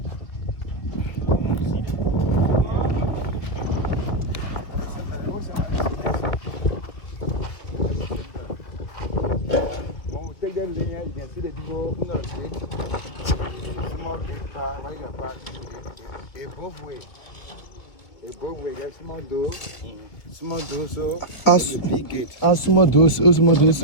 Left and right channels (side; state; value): right; late; 2.1 ms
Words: take that linear, you can see the people who not gate. Small gate part, what you got part? It both way. It both way. Get small door. Small door, so the big gate. Small door, so.